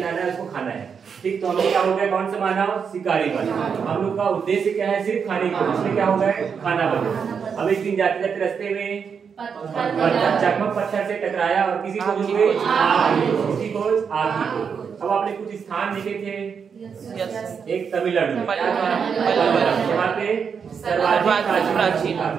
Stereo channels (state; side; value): quieter; left; 6.5 dB